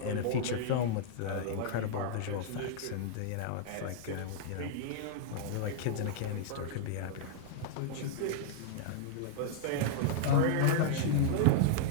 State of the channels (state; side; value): different; both; correlation -0.01